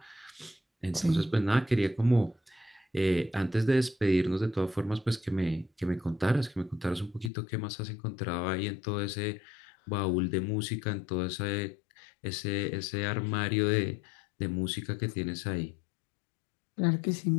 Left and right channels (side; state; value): right; drops out; at 7.3 s